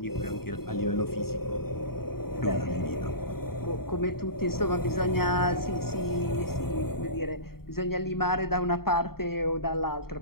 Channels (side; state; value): right; late; 0.94 ms